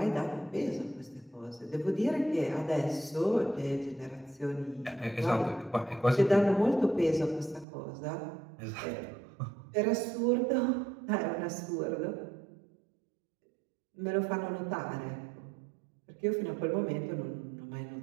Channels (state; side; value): drops out; left; at 7.7 s